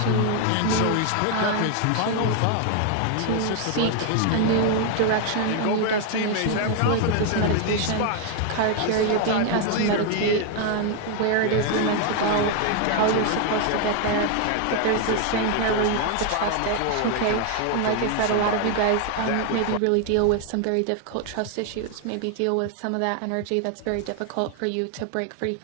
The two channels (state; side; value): different; both; correlation 0.01